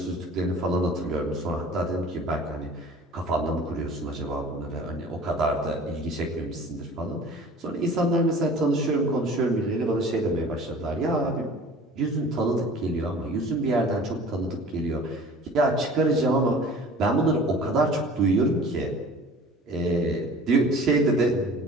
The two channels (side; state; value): both; normal; correlation 0.45